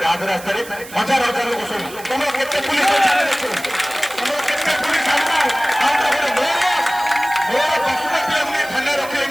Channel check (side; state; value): right; noise; hiss, 16 dB below the sound